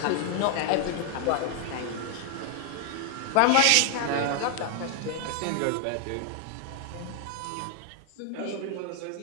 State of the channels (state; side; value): different; both; correlation 0.00